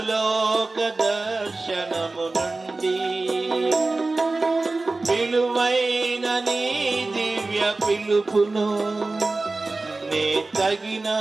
దర్శనము నుండి విలువైన నీ దివ్య పిలుపును నే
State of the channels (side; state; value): left; quieter; 3.3 dB